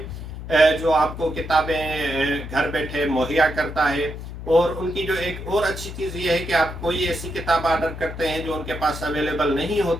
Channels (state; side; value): noise; left; hum, 9 dB below the sound